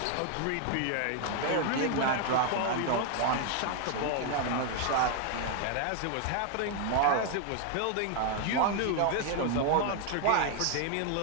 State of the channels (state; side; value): different; both; correlation 0.00